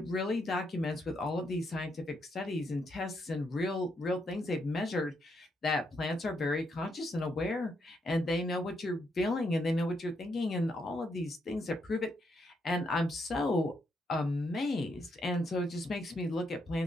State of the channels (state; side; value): normal; both; correlation 0.78